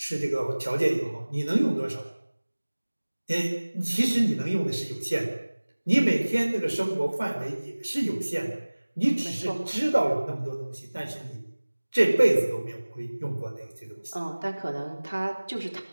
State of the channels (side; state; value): both; inverted; correlation -1.00